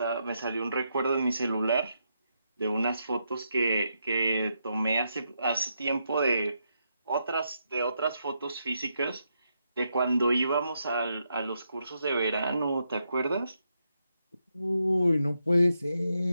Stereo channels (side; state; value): both; inverted; correlation -0.81